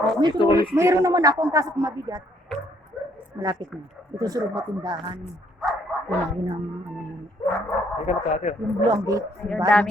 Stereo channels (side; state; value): both; normal; correlation 0.67